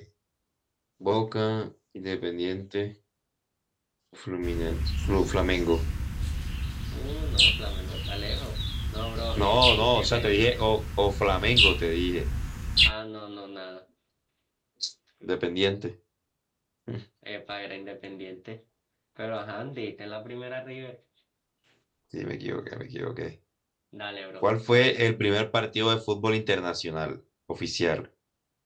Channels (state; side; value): identical; both; correlation 1.00